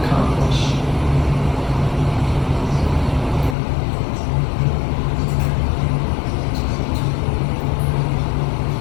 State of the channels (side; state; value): right; drops out; at 3.6 s